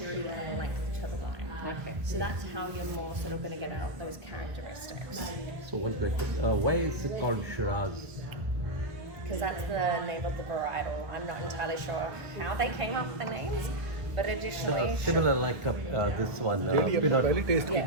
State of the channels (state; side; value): late; left; 1.3 ms